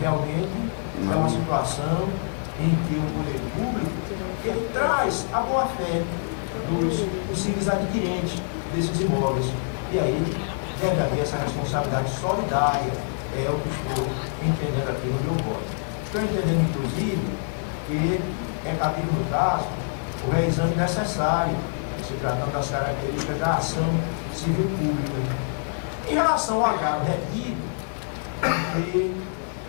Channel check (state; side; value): silent; right; digital silence